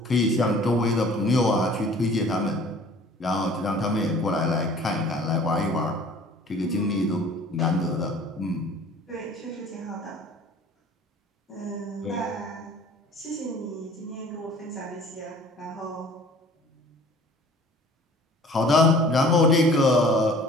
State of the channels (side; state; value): both; normal; correlation 0.49